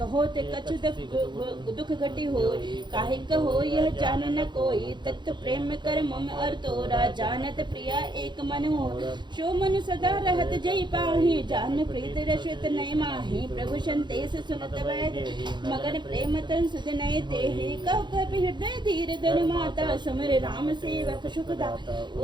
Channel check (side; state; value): left; late; 0.22 ms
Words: ते कछु दुख घटी हो, काहे कहो यह जान न कोई, तत्व प्रेम कर मम अर तोरा, जानत प्रिया एक मन हो, शो मन सदा रहत जय पाही, जान प्रीत रसित नय माही, प्रभु संदेश सुनत वैद, मगन प्रेम तन सुध नय तेहि, कह कपि हृदय धीर धर माता, सुमिर राम सेवक सुखदा,